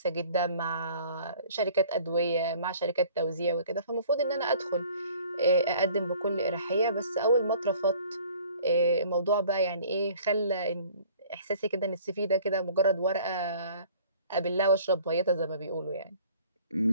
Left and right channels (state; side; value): inverted; both; correlation -0.52